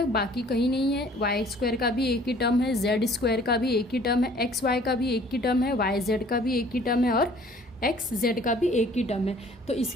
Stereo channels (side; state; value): both; normal; correlation 0.54